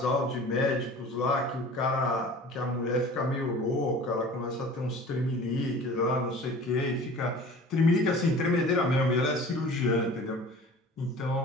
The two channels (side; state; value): both; normal; correlation 0.43